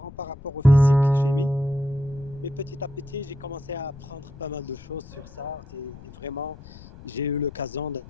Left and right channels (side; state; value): left; noise; rumble, 18 dB below the sound